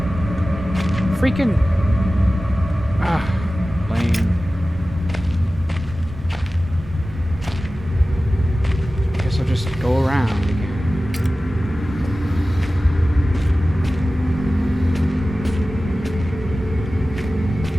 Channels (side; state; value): both; normal; correlation 0.96